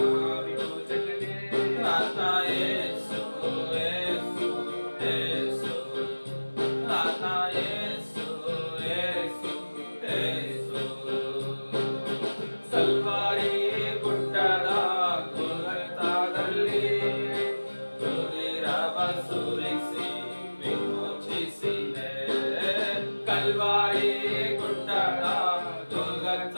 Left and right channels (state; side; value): inverted; both; correlation -1.00